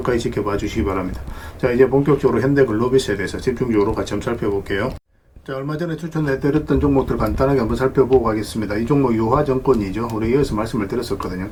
지켜봐 주시기 바랍니다. 자, 이제 본격적으로 현대글로비스에 대해서 집중적으로 같이 한번 살펴볼게요. 자, 얼마 전에 추천해드렸던 종목들 간단하게 한번 살펴보고 가겠습니다. 이 종목 유화증권이죠. 우리 여기서 말씀을 드렸었거든요.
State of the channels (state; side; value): identical; both; correlation 1.00